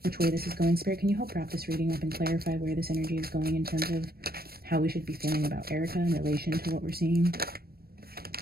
which way this is going. Spirit, can you help wrap this reading up and clarify where this energy is going in terms of how we should be feeling about Erika in relation to what we're seeing?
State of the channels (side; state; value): left; late; 0.44 ms